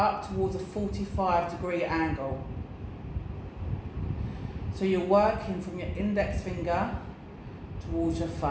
towards a 45-degree angle. So you're working from your index finger towards your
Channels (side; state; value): both; identical; correlation 1.00